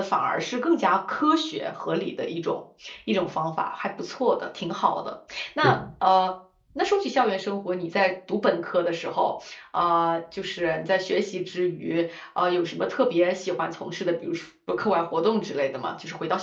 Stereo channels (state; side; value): identical; both; correlation 1.00